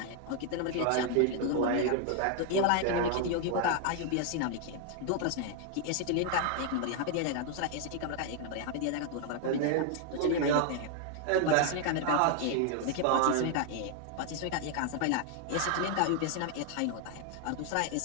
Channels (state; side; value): different; both; correlation 0.00